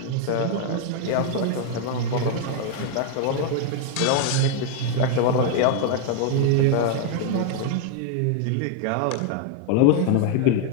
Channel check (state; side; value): different; both; correlation 0.00